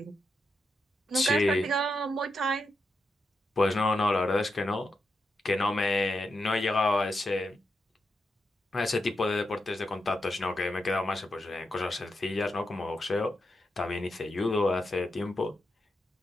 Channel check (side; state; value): both; normal; correlation 0.86